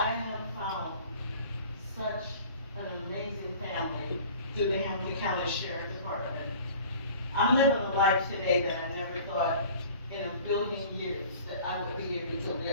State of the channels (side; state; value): both; inverted; correlation -0.46